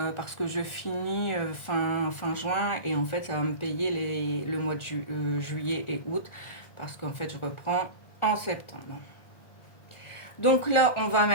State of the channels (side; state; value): right; late; 1.4 ms